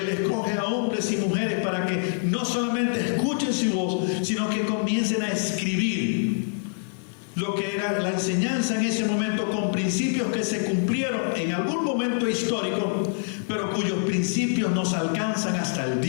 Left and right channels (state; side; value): silent; right; 61 dB below the other